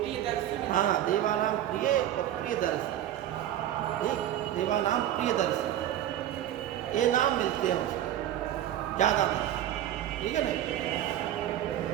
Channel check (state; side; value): quieter; left; 11.8 dB